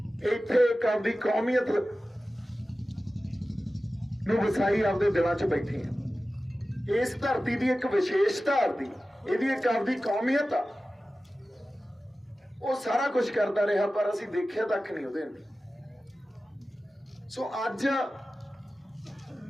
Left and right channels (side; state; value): both; normal; correlation 0.95